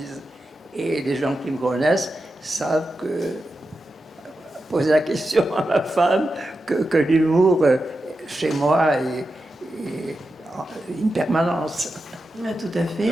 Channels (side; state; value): both; normal; correlation 0.90